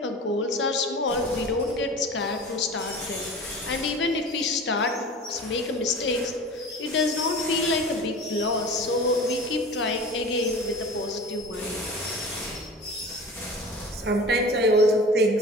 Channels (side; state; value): both; normal; correlation 0.37